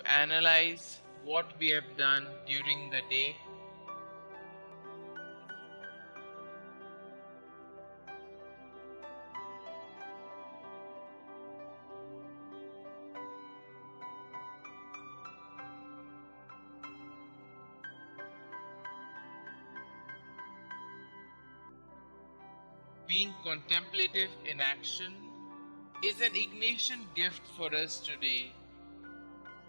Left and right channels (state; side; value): inverted; both; correlation -1.00